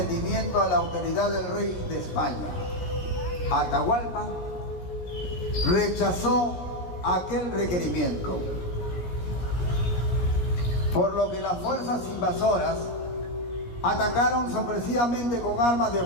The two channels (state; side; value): late; right; 17 ms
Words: a la autoridad del rey de España. Atahualpa rechazó aquel requerimiento, por lo que las fuerzas invasoras atacaron sorpresivamente con armas de